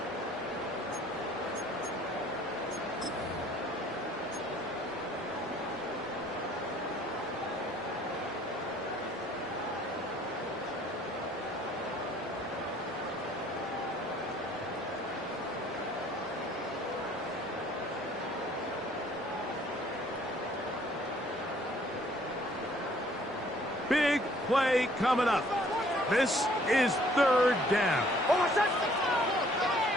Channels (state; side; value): normal; both; correlation 0.59